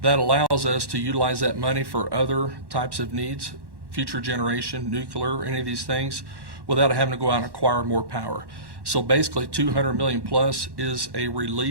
that allows us to utilize that money for other types of needs, future generation, nuclear, any of these things, without having to go out and acquire more power. So basically 200 million plus is a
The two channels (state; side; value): late; left; 1.1 ms